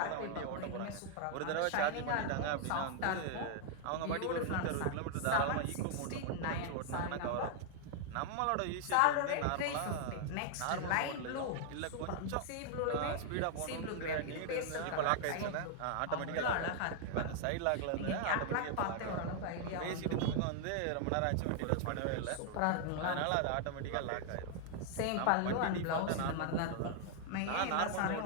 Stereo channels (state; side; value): different; both; correlation 0.00